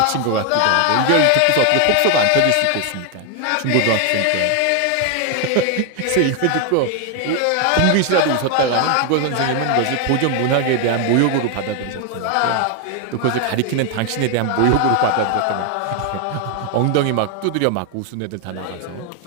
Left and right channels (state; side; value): different; both; correlation 0.01